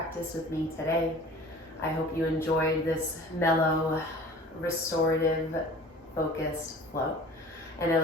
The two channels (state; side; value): normal; both; correlation 0.44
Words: with me today. I hope you enjoyed this mellow, restorative, focused flow. And I